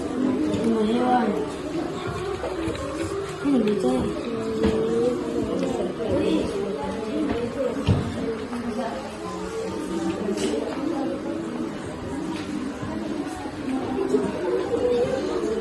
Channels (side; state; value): both; identical; correlation 1.00